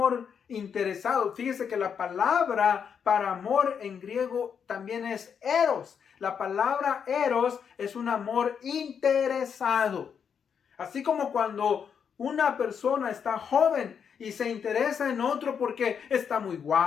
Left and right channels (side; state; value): right; quieter; 7.2 dB